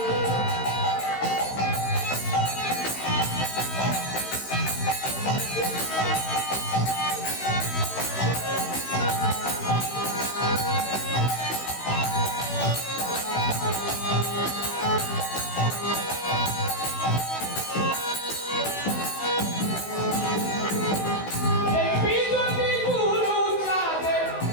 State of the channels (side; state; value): right; late; 16 ms